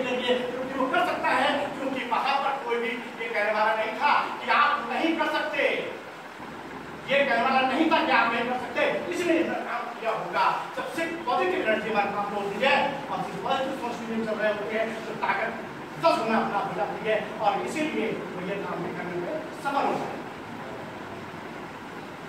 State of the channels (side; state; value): both; identical; correlation 1.00